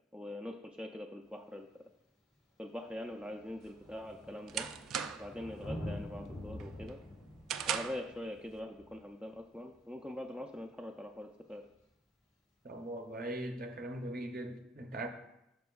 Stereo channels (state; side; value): normal; both; correlation 0.69